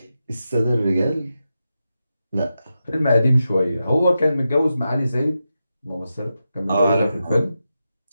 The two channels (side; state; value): both; inverted; correlation -0.89